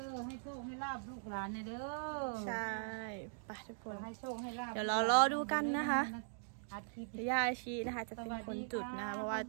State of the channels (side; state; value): left; silent; digital silence